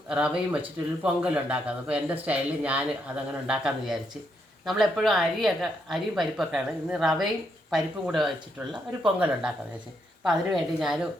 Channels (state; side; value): normal; both; correlation 0.78